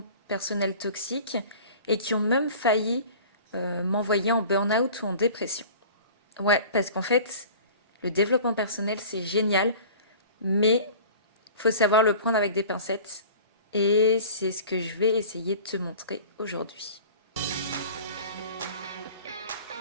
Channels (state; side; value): inverted; both; correlation -0.42